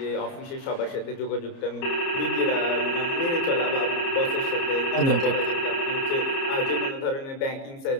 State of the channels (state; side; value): late; right; 30 ms